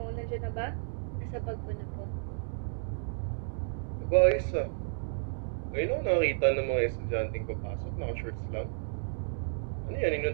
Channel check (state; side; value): silent; left; digital silence